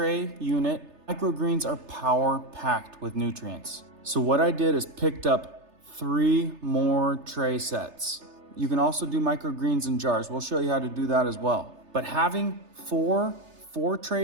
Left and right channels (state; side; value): late; left; 3.3 ms